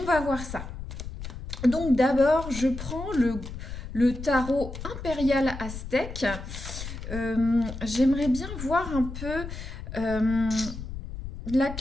va voir ça. Donc d'abord, je prends le tarot impérial aztèque. J'aimerais bien voir un peu la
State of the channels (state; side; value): noise; left; rumble, 9 dB below the sound